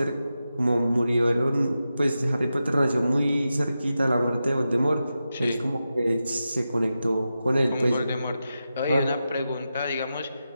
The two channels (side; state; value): both; inverted; correlation -0.90